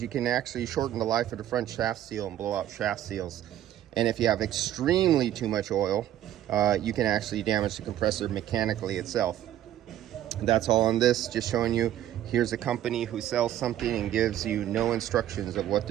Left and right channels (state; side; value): quieter; left; 12.2 dB